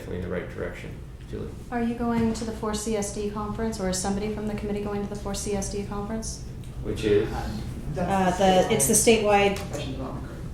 in the right direction. Julie? Are you going to the 4CSD conference, or is somebody from the committee going to the 4CSD conference? Which is? It's the statewide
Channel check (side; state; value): both; identical; correlation 1.00